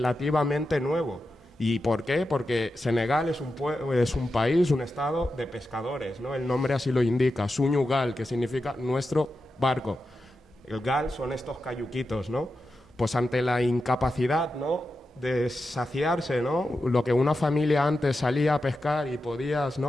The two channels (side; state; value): both; normal; correlation 0.90